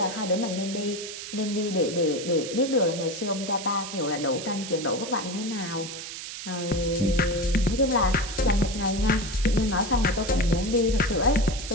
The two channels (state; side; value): noise; right; hiss, 9 dB below the sound